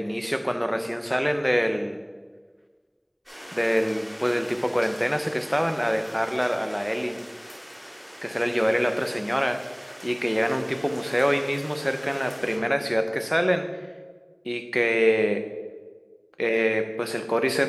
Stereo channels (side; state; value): both; identical; correlation 1.00